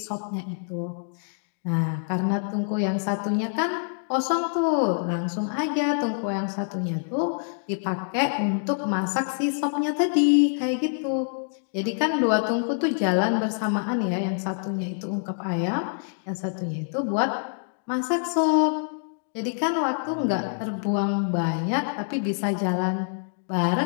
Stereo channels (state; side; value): silent; right; digital silence